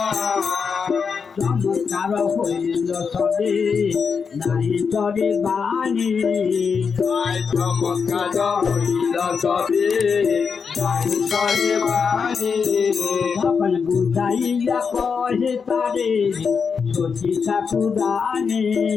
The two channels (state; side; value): quieter; right; 5.8 dB